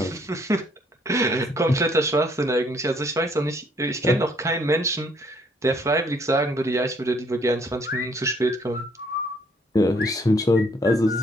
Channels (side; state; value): both; normal; correlation 0.65